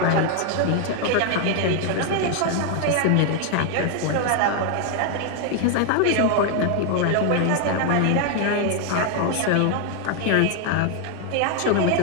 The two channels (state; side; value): different; both; correlation 0.00